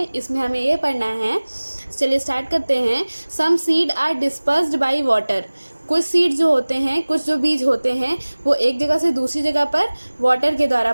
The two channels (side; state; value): both; inverted; correlation -1.00